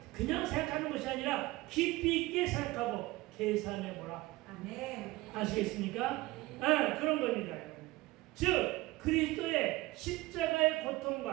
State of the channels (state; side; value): quieter; left; 19.9 dB